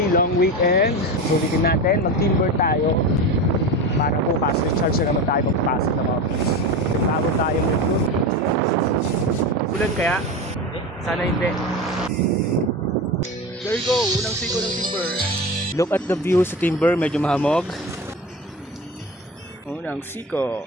long weekend. Sulitin natin, mag-timber tayo. Para bukas, recharge na naman tayo magpasok ng office. Bago tayo mag-group. Ulan kaya? Sana hindi. There you go, unang siko ng timber. Look at the view sa timber, medyo mahamog. Unang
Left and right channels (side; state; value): both; normal; correlation 0.25